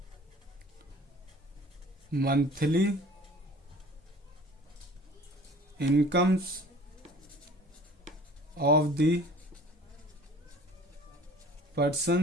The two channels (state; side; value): normal; both; correlation 0.48